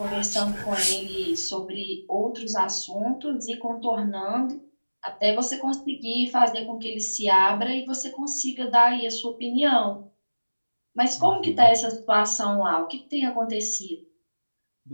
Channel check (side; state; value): both; inverted; correlation -1.00